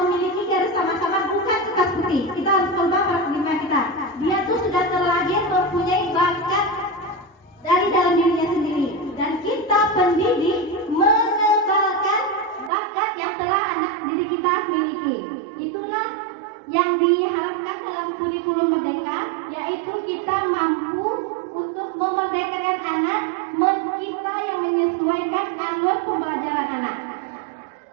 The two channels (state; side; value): drops out; left; at 12.7 s